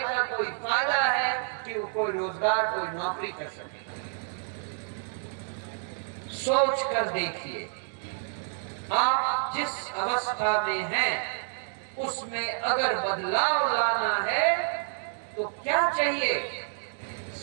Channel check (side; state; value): left; silent; digital silence